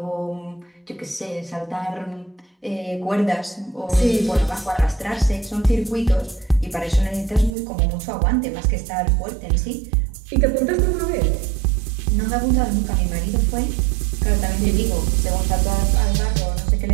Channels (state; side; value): drops out; left; at 7.5 s